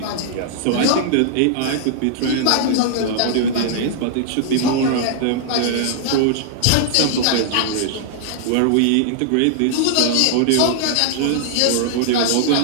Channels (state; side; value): different; both; correlation -0.01